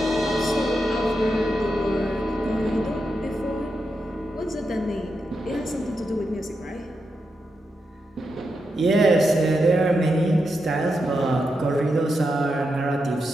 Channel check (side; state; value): both; normal; correlation 0.86